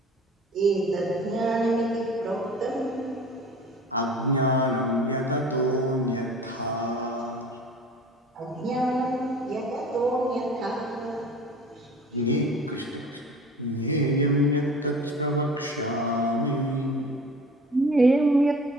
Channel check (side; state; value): both; normal; correlation 0.42